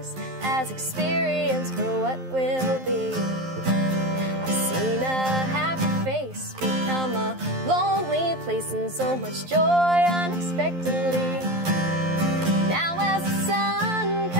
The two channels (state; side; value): late; left; 11 ms